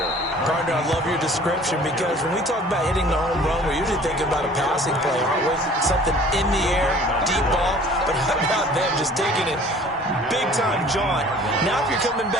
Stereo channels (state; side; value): normal; both; correlation 0.50